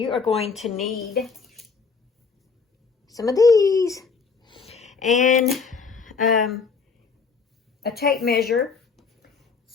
are going to need some of these and a tape measure.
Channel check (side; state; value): right; quieter; 5.1 dB